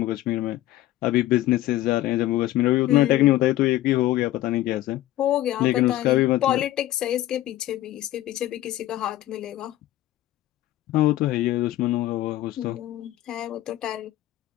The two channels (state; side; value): quieter; right; 14.9 dB